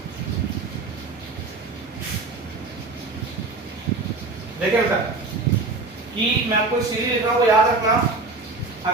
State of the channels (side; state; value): left; quieter; 3.6 dB